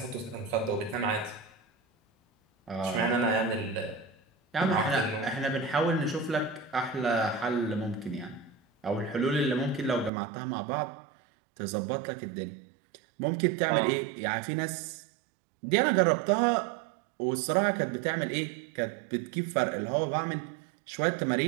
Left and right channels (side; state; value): left; drops out; at 10.1 s